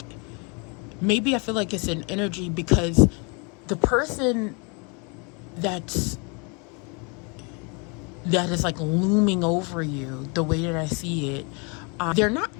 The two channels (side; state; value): right; quieter; 33.3 dB